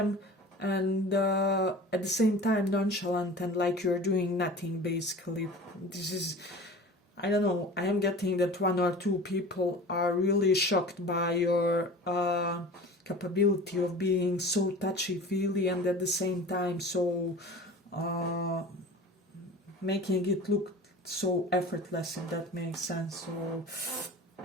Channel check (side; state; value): both; normal; correlation 0.38